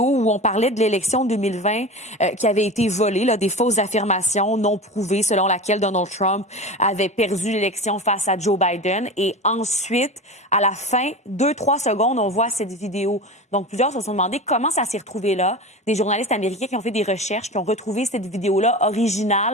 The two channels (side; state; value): both; normal; correlation 0.29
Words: où on parlait de l'élection 2020 qui avait été volée, là, des fausses affirmations non prouvées selon laquelle Donald Trump avait perdu l'élection face à Joe Biden. Et ensuite, à la fin, 2-3 secondes, on voit cette vidéo. Donc, plusieurs se sont demandé comment ça s'est retrouvé là. Des journalistes américains qui ont fait des recherches, qui ont retrouvé cette vidéo-là